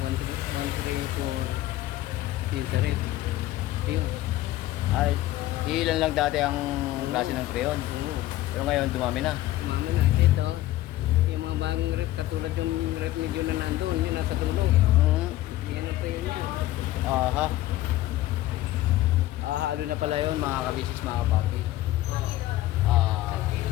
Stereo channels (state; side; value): quieter; right; 15.5 dB